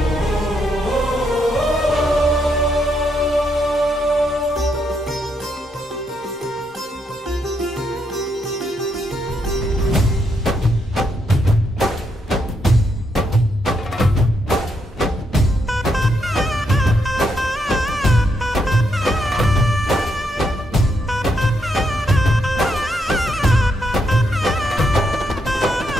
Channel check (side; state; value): both; normal; correlation 0.78